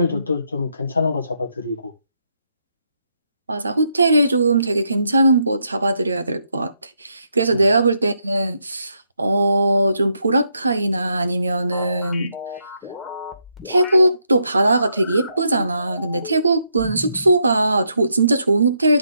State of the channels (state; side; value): inverted; both; correlation -0.78